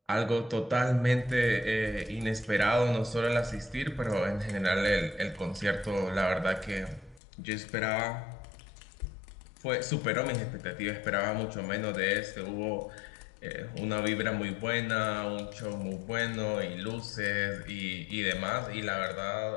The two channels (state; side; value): drops out; right; at 7.2 s